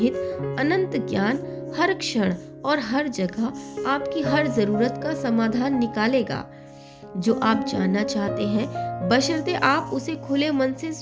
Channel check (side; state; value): both; identical; correlation 1.00